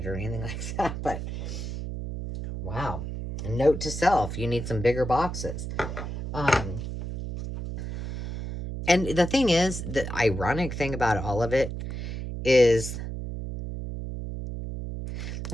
or anything like that, but wow. A note to self, you need some bigger boxes. And the thing is, the ironic thing about all of it is,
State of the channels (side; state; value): right; noise; hum, 6 dB below the sound